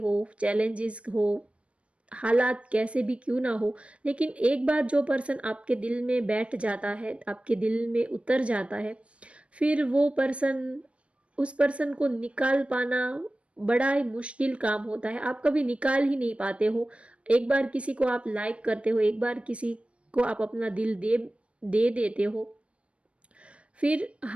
चैलेंजेस हो, हालात कैसे भी क्यों ना हो, लेकिन एक बार जो पर्सन आपके दिल में बैठ जाता है, आपके दिल में उतर जाता है, फिर वो पर्सन, उस पर्सन को निकाल पाना बड़ा ही मुश्किल काम होता है। आप कभी निकाल ही नहीं पाते हो। एक बार किसी को आप लाइक करते हो, एक बार किसी को आप अपना दिल दे देते हो, फिर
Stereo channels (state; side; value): late; left; 0.061 ms